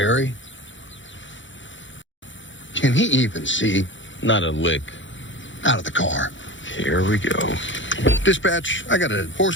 Can he even see? Not a lick. Out of the car. Here we go. Dispatch, I got a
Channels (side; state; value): right; late; 0.55 ms